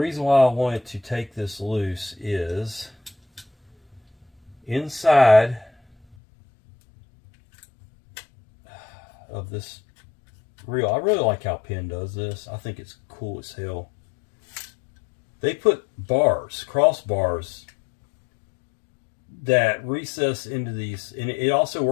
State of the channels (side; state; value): right; drops out; at 6.2 s